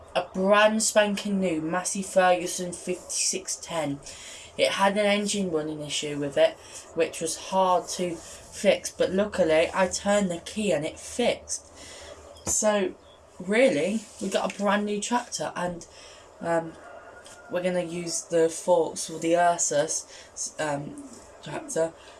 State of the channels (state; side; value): identical; both; correlation 1.00